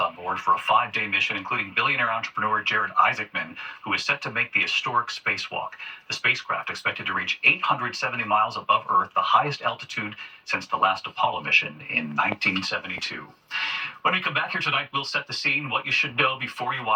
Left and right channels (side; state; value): both; identical; correlation 1.00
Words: board for a 5-day mission, including billionaire entrepreneur Jared Isaacman, who is set to make the historic spacewalk. The spacecraft expected to reach 870 miles above Earth, the highest altitude since the last Apollo mission in 1972. When we come back here tonight, we'll set the scene, what you should know before you